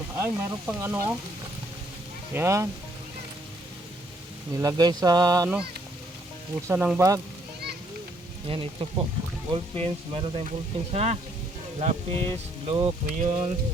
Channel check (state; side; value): normal; both; correlation 0.68